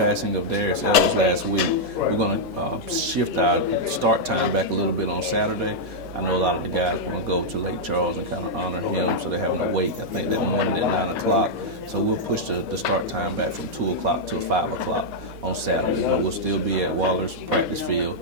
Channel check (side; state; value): both; normal; correlation -0.05